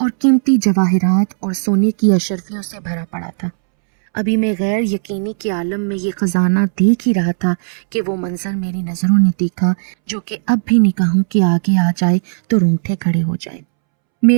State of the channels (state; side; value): silent; left; 69 dB below the other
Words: قیمتی جواہرات اور سونے کی اشرفیوں سے بھرا پڑا تھا۔ ابھی میں غیر یقینی کے عالم میں یہ خزانہ دیکھ ہی رہا تھا کہ وہ منظر میری نظروں نے دیکھا، جو کہ اب بھی نگاہوں کے آگے آ جائے تو رونگٹے کھڑے ہو جائے۔